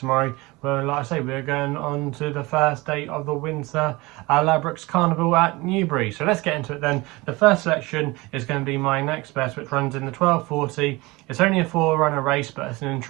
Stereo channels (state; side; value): quieter; left; 22.8 dB